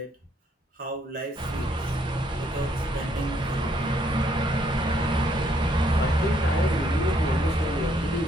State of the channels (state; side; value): normal; both; correlation 0.70